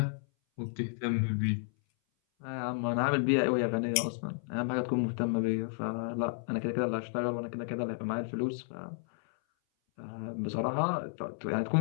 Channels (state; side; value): silent; right; 56 dB below the other